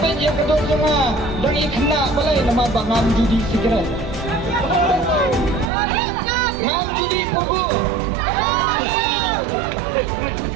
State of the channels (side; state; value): left; drops out; at 5.7 s